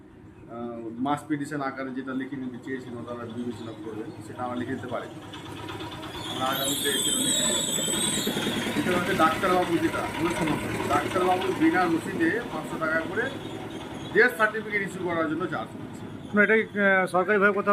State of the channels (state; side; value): identical; both; correlation 1.00